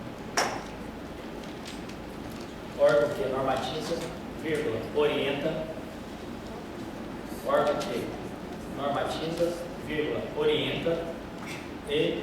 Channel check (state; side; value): identical; both; correlation 1.00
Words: vírgula, orienta, órgão que normatiza, vírgula, orienta e